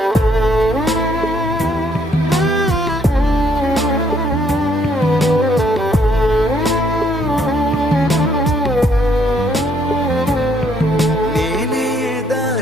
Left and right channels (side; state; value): both; normal; correlation 0.69